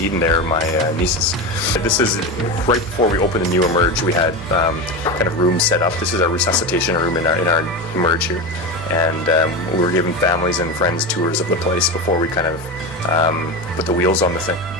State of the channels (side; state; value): both; normal; correlation 0.21